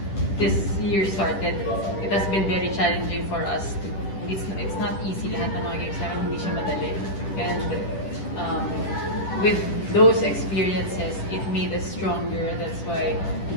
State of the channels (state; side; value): late; right; 10 ms